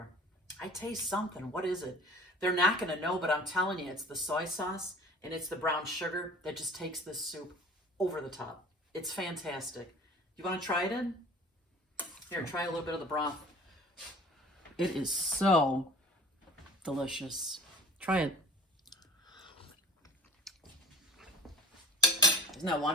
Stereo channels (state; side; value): normal; both; correlation 0.44